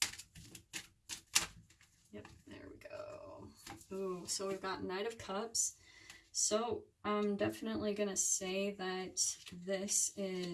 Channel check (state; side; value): identical; both; correlation 1.00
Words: Yep, there we go. Ooh, so we've got Knight of Cups. So I'm definitely going to say that this